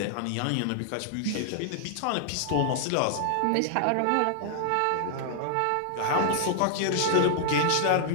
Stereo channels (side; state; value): both; different; correlation 0.00